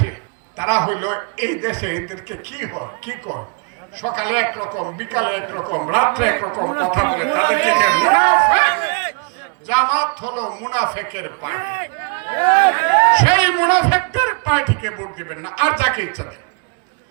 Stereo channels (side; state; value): left; quieter; 37.2 dB